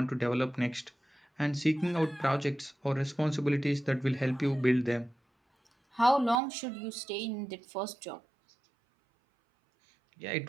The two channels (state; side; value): drops out; left; at 6.4 s